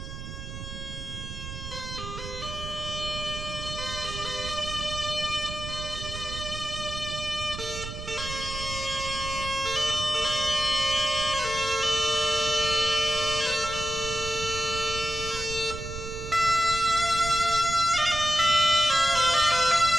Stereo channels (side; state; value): right; noise; rumble, 9 dB below the sound